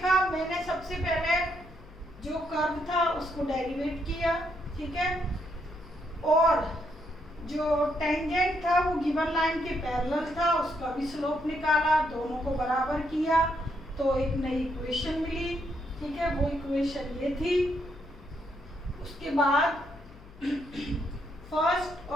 मैंने सबसे पहले जो कर्व था उसको डेरिवेट किया। ठीक है, और जो टेंजेंट था वो गिवन लाइन के पैरेलल था, उसका भी स्लोप निकाला, दोनों को बराबर किया तो एक नई इक्वेशन मिली। ठीक है, वो इक्वेशन ये थी। उसके बाद फर्स्ट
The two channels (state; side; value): noise; left; hum, 20 dB below the sound